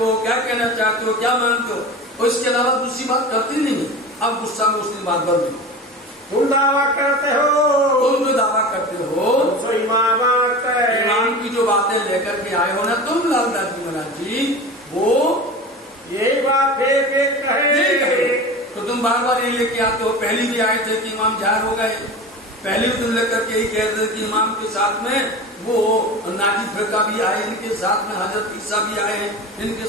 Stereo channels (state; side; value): normal; both; correlation 0.32